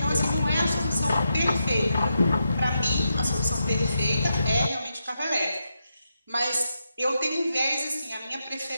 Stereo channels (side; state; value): both; inverted; correlation -0.85